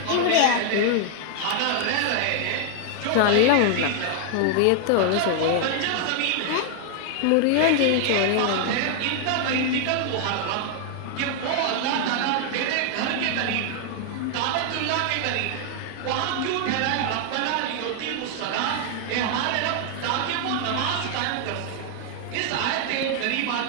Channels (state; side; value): different; both; correlation 0.00